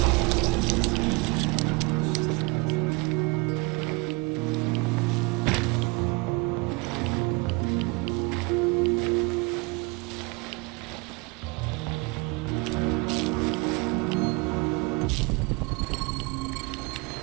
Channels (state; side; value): quieter; left; 27.5 dB